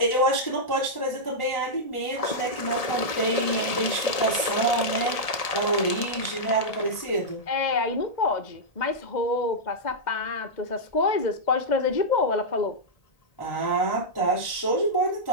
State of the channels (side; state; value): right; late; 1.7 ms